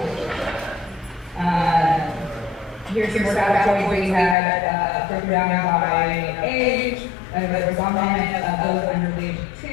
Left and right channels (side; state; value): right; drops out; at 4.4 s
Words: Here's your categories. We had broken down by age, there was dominant of those under the age of